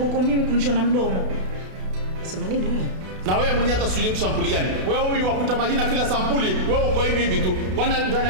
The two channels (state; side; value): late; left; 32 ms